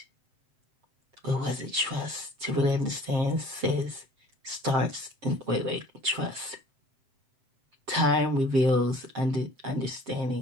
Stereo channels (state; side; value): late; left; 7.5 ms